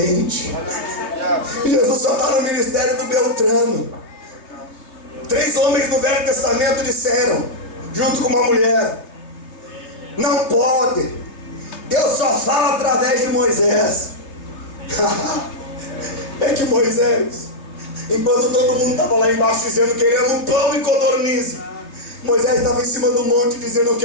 Jesus só está no ministério do Beltrano. 3 homens do Velho Testamento disseram, junto com uma mulher: não pode, Deus só fala através de Moisés. É que Moisés, enquanto todo mundo estava lá embaixo dizendo: queremos pão e codorniz, Moisés estava em cima do monte dizendo: eu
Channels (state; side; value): late; right; 3.2 ms